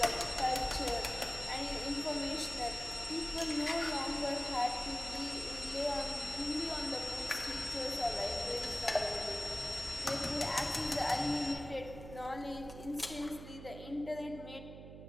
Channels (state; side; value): noise; right; hum, 13 dB below the sound